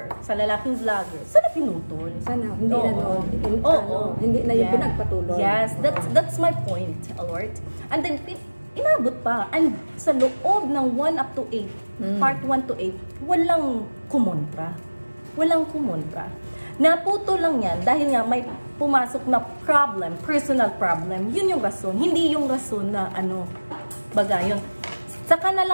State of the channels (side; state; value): both; inverted; correlation -1.00